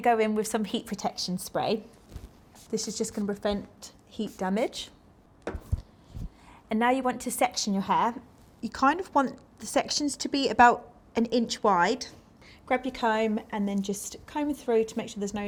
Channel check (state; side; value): identical; both; correlation 1.00